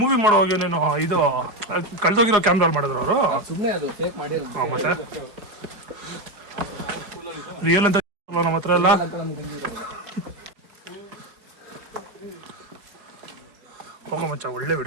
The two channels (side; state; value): left; late; 4.7 ms